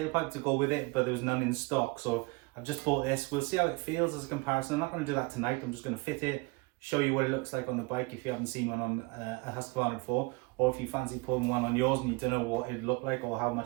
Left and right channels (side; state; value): left; quieter; 26.9 dB